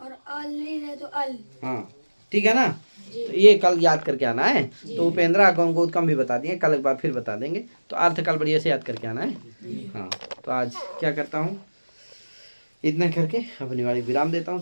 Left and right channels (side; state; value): both; inverted; correlation -1.00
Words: और आल री रहे तो अल। हाँ ठीक है ना। तो ये कल याद करके आना है। तो उपेंद्रा को गौतम भी बता दिए, कल एक बार फिर बता देंगे। तो अर्थ कल बढ़िया से याद करके आना है। हाँ तो आज क्या करता हूँ, इतना करके अपनी वाली विराम देता हूँ।